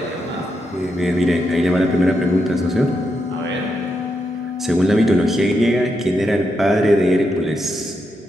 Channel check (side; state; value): both; normal; correlation 0.83